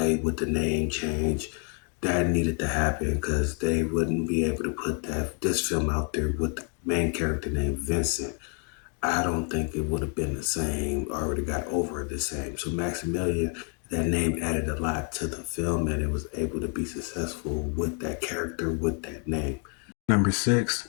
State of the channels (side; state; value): right; quieter; 40.0 dB